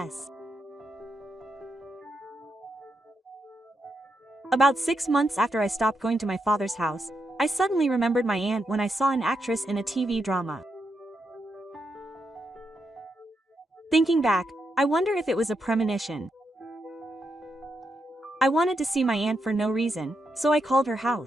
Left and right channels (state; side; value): normal; both; correlation 0.83